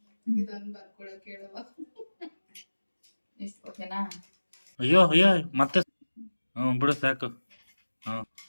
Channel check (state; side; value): inverted; both; correlation -1.00